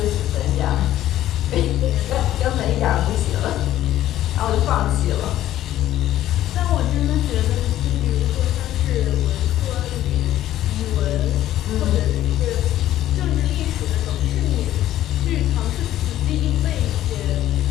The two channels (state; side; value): quieter; right; 13.1 dB